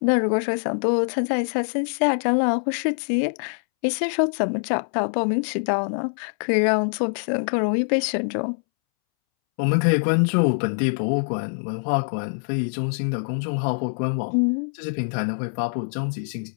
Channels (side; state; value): right; silent; 63 dB below the other